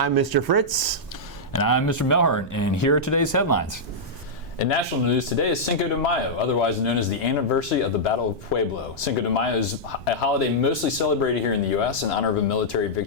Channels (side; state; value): right; noise; rumble, 20 dB below the sound